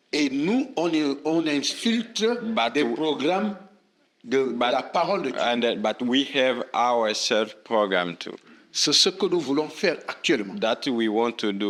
Et nous, on infiltre des programmes de la parole de Dieu. And but we have our self program too. C'est ce que nous voulons faire actuellement. That we want to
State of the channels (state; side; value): identical; both; correlation 1.00